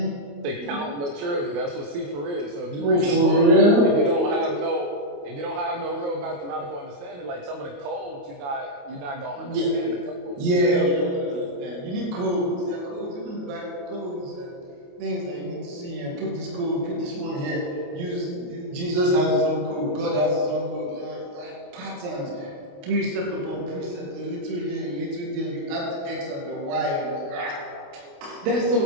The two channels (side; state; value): left; late; 28 ms